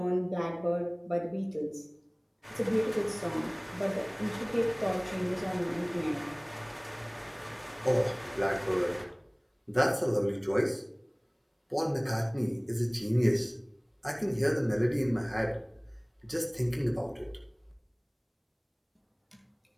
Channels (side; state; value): both; identical; correlation 1.00